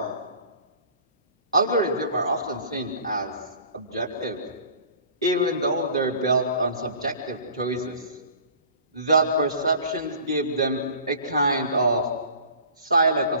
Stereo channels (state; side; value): inverted; both; correlation -0.47